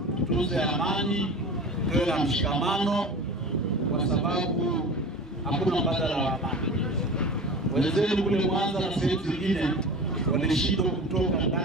tutunze amani, tuwe na mshikamano, kwa sababu hakuna mbadala wa amani. Wenzetu kule Mwanza na sehemu zingine walishindwa kutoka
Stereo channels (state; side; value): normal; both; correlation 0.34